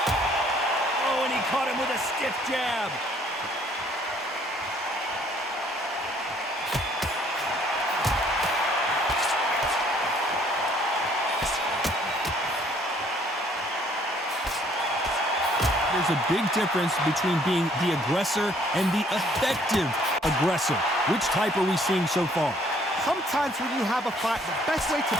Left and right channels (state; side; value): normal; both; correlation 0.62